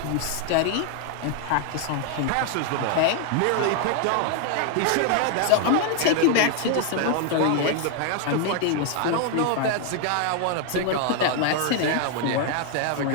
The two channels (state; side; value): different; both; correlation 0.00